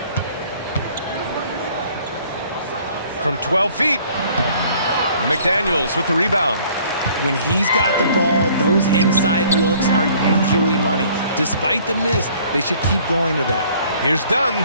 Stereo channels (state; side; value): inverted; both; correlation -0.56